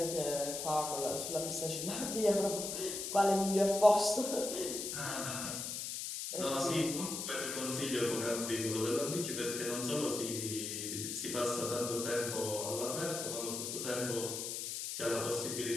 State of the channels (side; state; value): left; noise; hiss, 4 dB below the sound